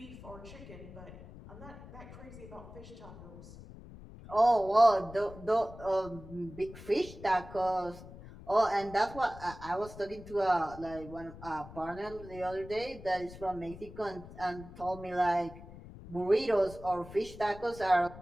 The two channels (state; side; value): noise; left; rumble, 16 dB below the sound